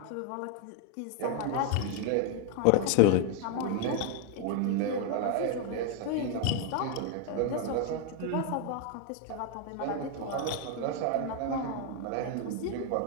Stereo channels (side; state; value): both; different; correlation 0.00